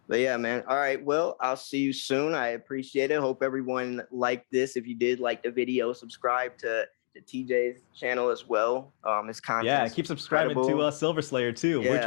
But yeah, man. All right. Well, I'll see you soon. I appreciate it. Hope everyone liked this. If you did like the video, subscribe to TJ's channel as well. His Yeah, content's keep subscribing to incredible. Silver Slayer too. We're trying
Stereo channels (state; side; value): silent; right; digital silence